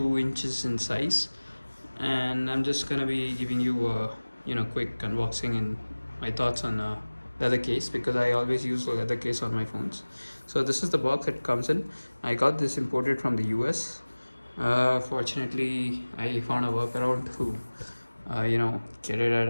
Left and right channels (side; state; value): both; inverted; correlation -1.00